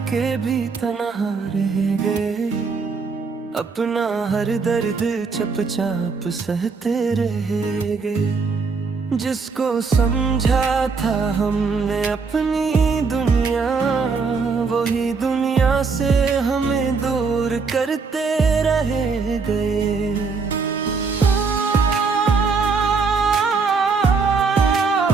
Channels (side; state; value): left; quieter; 4.8 dB